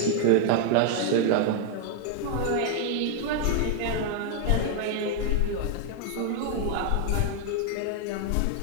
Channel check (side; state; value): both; different; correlation 0.00